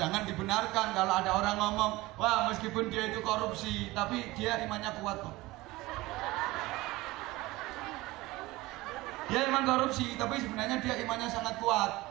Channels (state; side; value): quieter; left; 19.9 dB